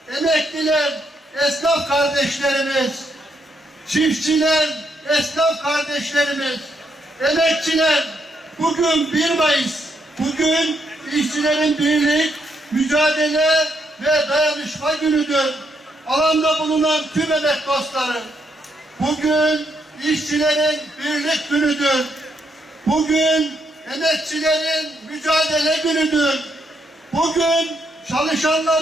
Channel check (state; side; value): normal; both; correlation 0.77